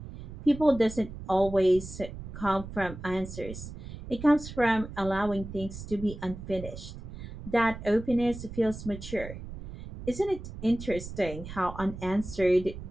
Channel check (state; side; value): noise; right; rumble, 11 dB below the sound